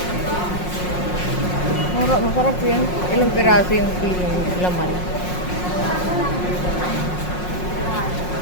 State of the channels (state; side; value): late; right; 5.5 ms